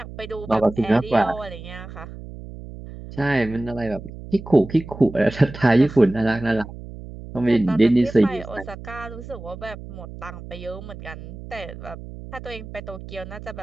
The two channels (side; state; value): right; noise; hum, 13 dB below the sound